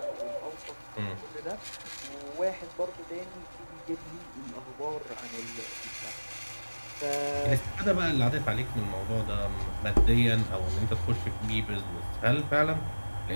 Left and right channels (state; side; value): inverted; both; correlation -1.00